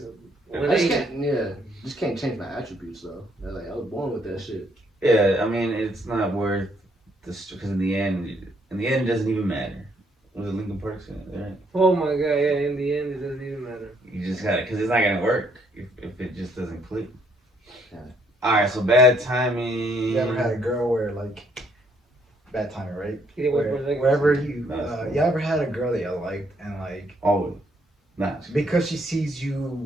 When I just they, can't, just can't change my attributes though. Like I was born with that shit. Yeah, I mean, it's not worth this because in the end, In the end, it doesn't even matter. Was it Lincoln Park? Right? Oh my god, yeah, in the end, it doesn't even matter. You just got it, because it's not going to work if it just doesn't click. Yeah. Alright, so bad timing. You ever had a girl where, like, bad timing, right? Yeah, Wherever you ever had a girl that you liked and, like, Always. Nah. because she sees you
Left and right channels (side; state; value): both; normal; correlation 0.69